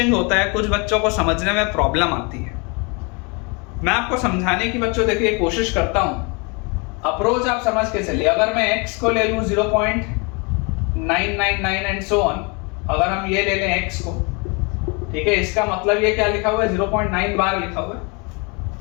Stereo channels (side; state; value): right; quieter; 31.2 dB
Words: होता है। कुछ बच्चों को समझने में प्रॉब्लम आती है। मैं आपको समझाने की बच्चों देखिए कोशिश करता हूं। अप्रोच आप समझ के चलिए। अगर मैं x को ले लूं 0.999 एंड सो ऑन, अगर हम ये ले लें x को, ठीक है, इसका मतलब ये क्या लिखा हुआ है, 0.9 बार लिखा हुआ है।